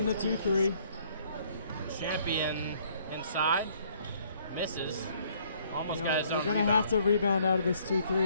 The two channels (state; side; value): inverted; both; correlation -0.63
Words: the 2-3. Champion inside, misses, almost got his own. We're going to have to rebound out of this